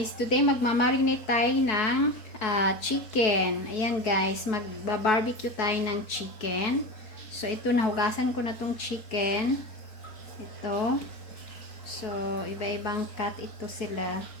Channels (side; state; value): right; late; 4.6 ms